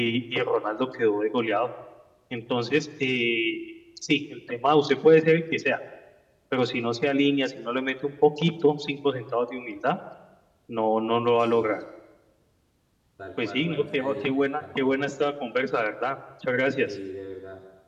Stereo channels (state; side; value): identical; both; correlation 1.00